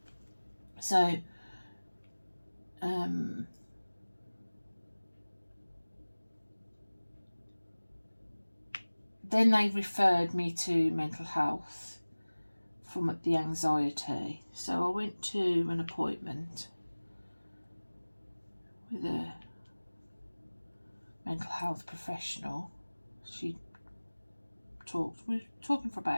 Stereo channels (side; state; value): both; inverted; correlation -1.00